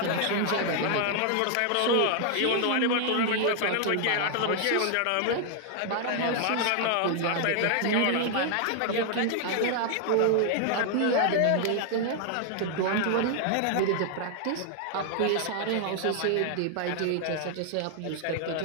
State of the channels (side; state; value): both; different; correlation 0.00